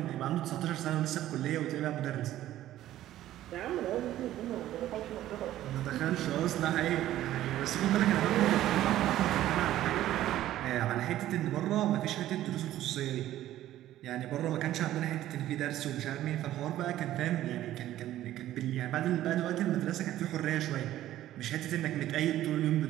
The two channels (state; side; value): quieter; left; 13.5 dB